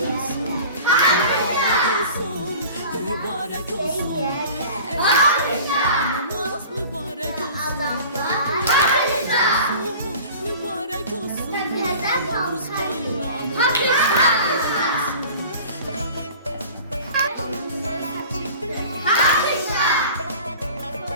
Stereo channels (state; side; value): inverted; both; correlation -0.41